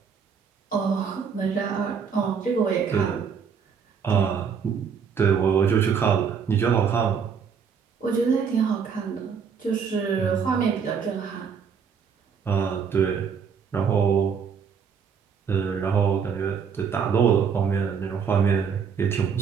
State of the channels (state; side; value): quieter; left; 6.5 dB